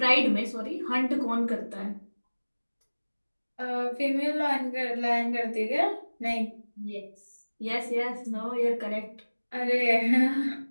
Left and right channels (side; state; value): both; inverted; correlation -1.00